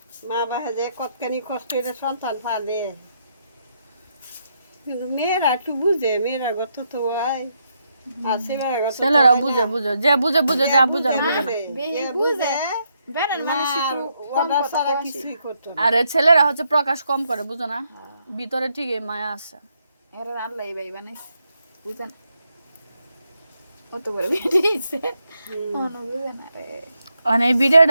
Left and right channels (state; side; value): inverted; both; correlation -0.78